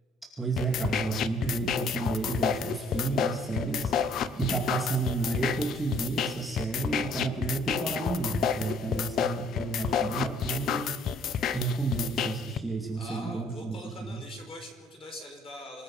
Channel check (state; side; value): normal; both; correlation 0.61